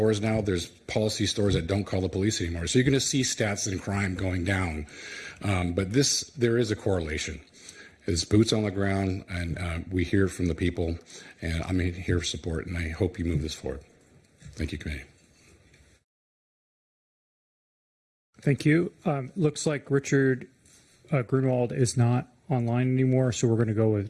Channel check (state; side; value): identical; both; correlation 1.00